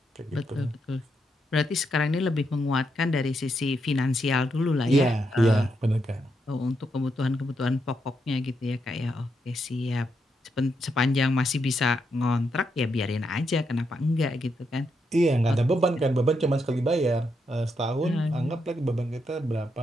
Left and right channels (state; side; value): normal; both; correlation 0.81